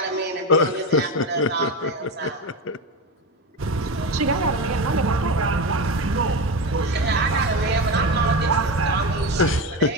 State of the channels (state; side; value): normal; both; correlation 0.19